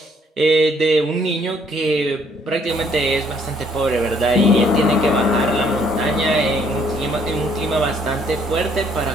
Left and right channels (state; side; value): normal; both; correlation 0.65